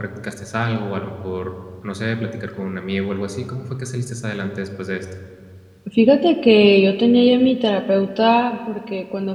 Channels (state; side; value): identical; both; correlation 1.00